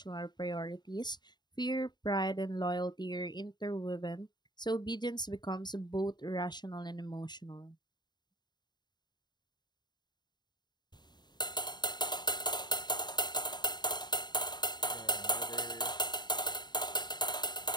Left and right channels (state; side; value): late; right; 0.21 ms